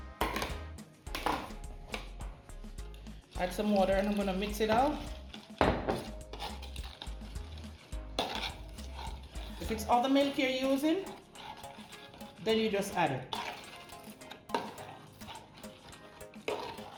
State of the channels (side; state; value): both; identical; correlation 1.00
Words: Add some water and I'm going to mix it out. If it's other milk you're using, then you just add it.